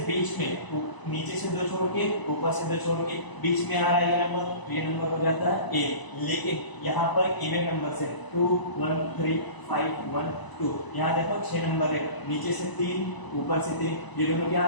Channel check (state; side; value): late; right; 1.0 ms